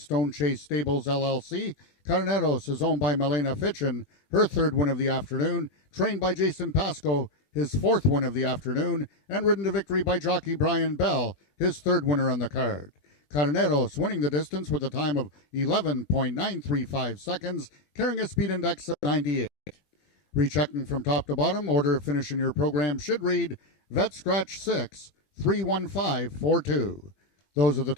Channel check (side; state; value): right; late; 21 ms